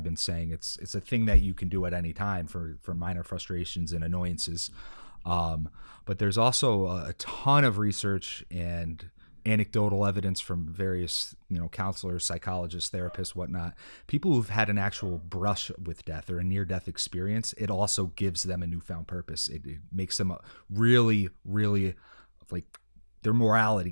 been saying, it's a thing that you can do at any time for minor frustrations and annoyances. But there's also a ton of research and anecdotal evidence from various, you know, counselors, psychologists, therapists, whatnot, people who've had an actual brush with death or a near-death experience. It also gives them a newfound purpose. It makes them really, really, like, their mortality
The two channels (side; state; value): both; inverted; correlation -1.00